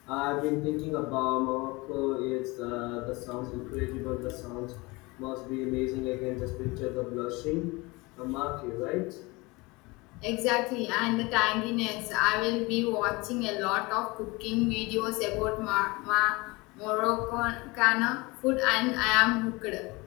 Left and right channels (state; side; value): quieter; right; 24.2 dB